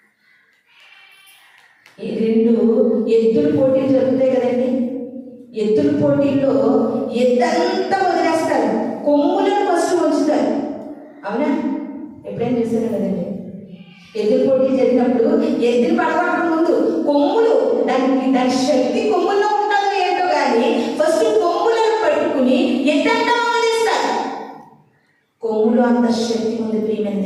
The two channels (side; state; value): both; identical; correlation 1.00